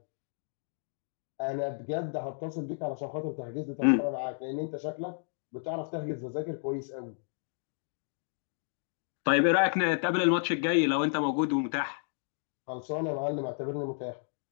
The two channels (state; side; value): silent; right; digital silence